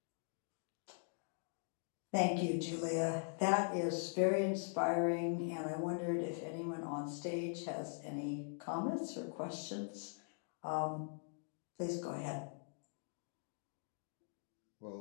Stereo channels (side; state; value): right; silent; digital silence